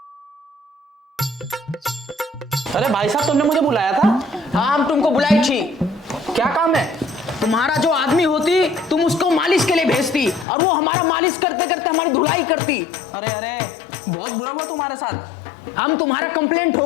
अरे भाई साहब तुमने मुझे बुलाया था? हाँ, हम तुमको बुलाई थी। क्या काम है? तुम्हारा जो आदमी होती तुम उसको मालिश के लिए भेजती और वो हमारा मालिश करते करते हमारी धुलाई करती। अरे अरे बहुत बुरा हुआ तुम्हारे साथ। हम तुम्हारा कंप्लेंट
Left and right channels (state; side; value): drops out; right; at 10.5 s